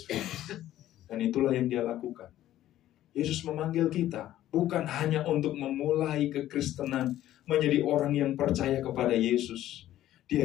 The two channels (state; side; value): quieter; right; 13.3 dB